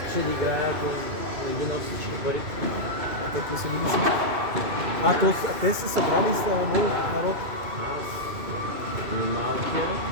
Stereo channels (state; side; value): late; left; 2.6 ms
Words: да играе, ако не би на всички пари. Те какви са били си? Те са събрали с народ. Малкия,